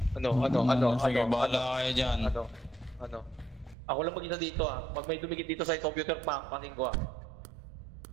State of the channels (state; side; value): drops out; left; at 3.8 s